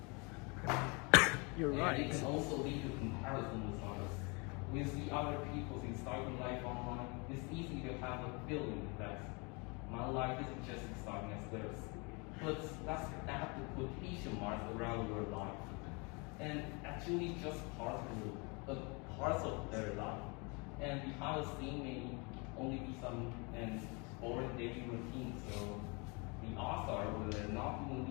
You're And right. it can also lead to comparison with others. When you see other people's exciting life online, it's easy to have a feeling that my life isn't just exciting as theirs. But let's add the quotation marks around your life. And actually just parts of their life. And behind the scene may only be some boring daily routine. So the odds are when they're not doing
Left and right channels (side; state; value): right; quieter; 30.6 dB